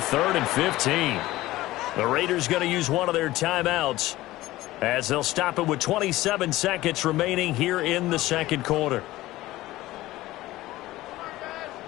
and 15. The Raiders going to use one of their timeouts as they'll stop it with 27 seconds remaining here in the second quarter.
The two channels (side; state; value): right; quieter; 17.1 dB